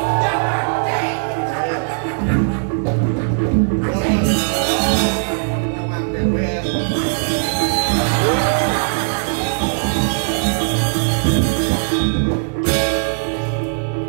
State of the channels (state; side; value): silent; left; digital silence